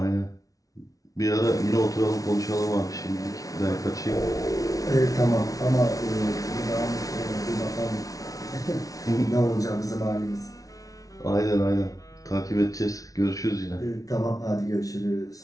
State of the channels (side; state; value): right; late; 0.17 ms